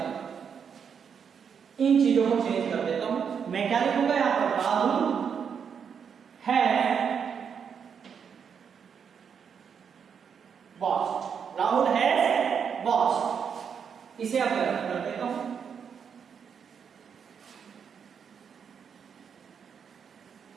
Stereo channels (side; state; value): left; quieter; 7.1 dB